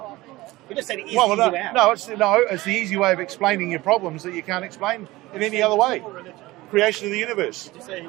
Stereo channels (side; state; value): left; quieter; 19.3 dB